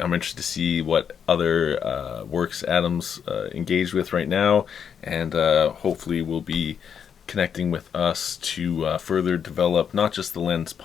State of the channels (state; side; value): quieter; right; 7.6 dB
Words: to see what other works Adam's engaged with right now, and hopefully will be connecting with us to further develop not just the Lens